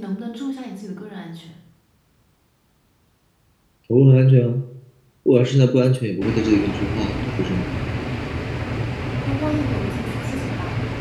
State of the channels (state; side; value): identical; both; correlation 1.00